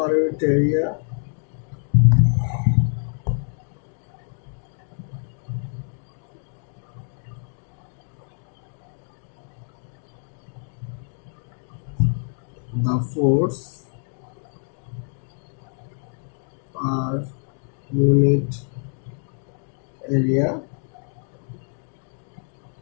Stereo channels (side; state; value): right; silent; digital silence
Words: unit area the force per unit area